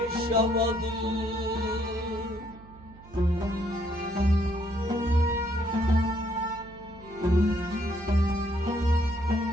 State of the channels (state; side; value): noise; right; hum, 21 dB below the sound